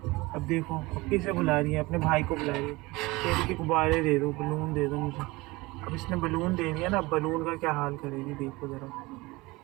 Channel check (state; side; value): quieter; left; 22.2 dB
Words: अब देखो अब किसे बुला रही है, अपने भाई को बुला रही है। कह रही कि गुब्बारे दे दो, बलून दे दो मुझे। अब इसने बलून दे दिया ना, अब बलून का क्या हाल करेगी देखो ज़रा।